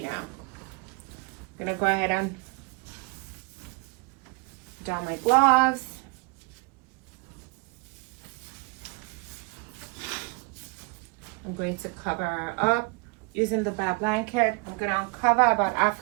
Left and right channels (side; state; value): left; quieter; 28.9 dB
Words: know. I'm gonna go ahead and don my gloves. I'm going to cover her up using the bath blanket. I'm going to uncover about